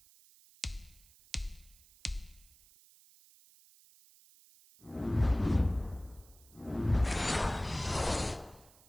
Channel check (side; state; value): right; noise; hiss, 26 dB below the sound